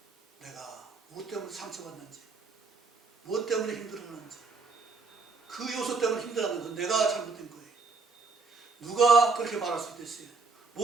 내가 무엇 때문에 상처받는지 무엇 때문에 힘들어하는지 그 요소 때문에 힘들어하는 건 내가 잘못된 거예요. 누가 그렇게 말할 수도 있어요.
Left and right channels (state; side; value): quieter; left; 4.2 dB